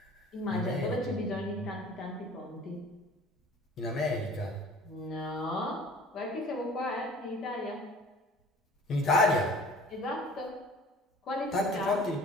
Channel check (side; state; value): both; normal; correlation 0.47